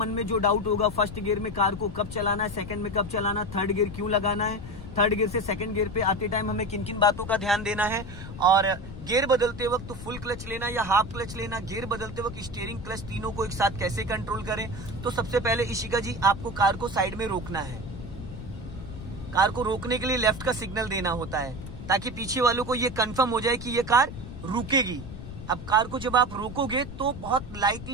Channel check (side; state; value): left; noise; rumble, 11 dB below the sound